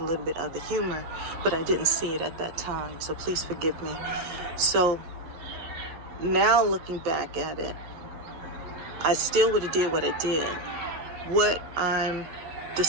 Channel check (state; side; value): late; left; 11 ms